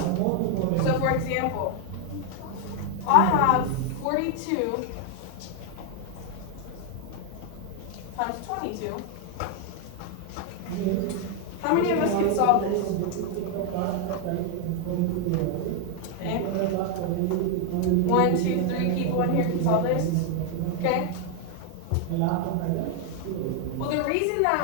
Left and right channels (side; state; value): both; different; correlation 0.00